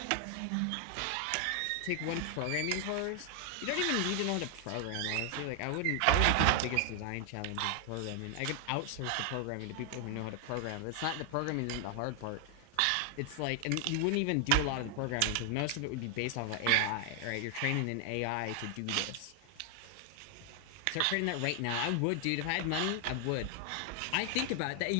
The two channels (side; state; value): both; different; correlation 0.00